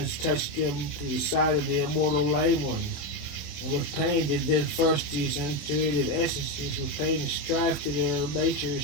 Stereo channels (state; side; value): late; right; 27 ms